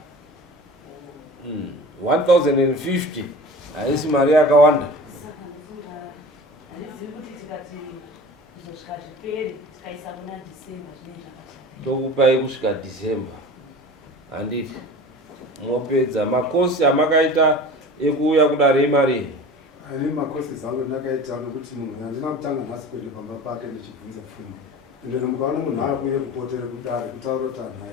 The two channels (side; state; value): both; normal; correlation 0.37